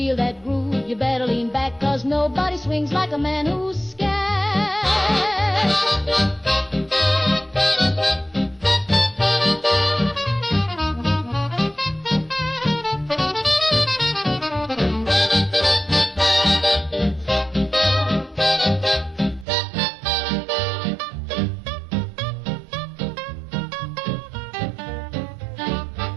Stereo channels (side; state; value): left; drops out; at 19.5 s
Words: that groove, you better lean back, 'cause nobody swings like a man who's scat.